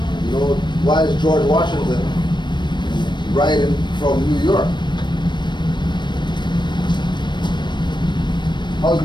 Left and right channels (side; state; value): right; late; 0.22 ms